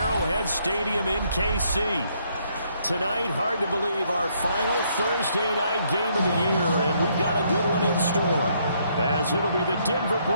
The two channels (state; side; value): inverted; both; correlation -0.71